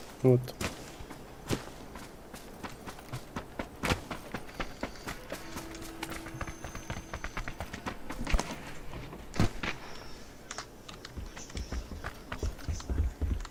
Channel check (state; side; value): identical; both; correlation 1.00